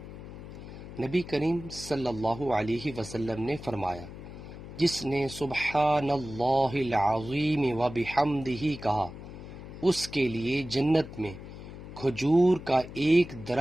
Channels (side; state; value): left; noise; hum, 13 dB below the sound